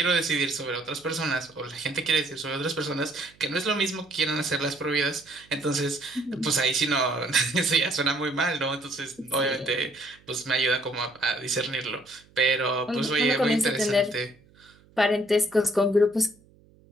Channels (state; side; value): noise; right; hum, 29 dB below the sound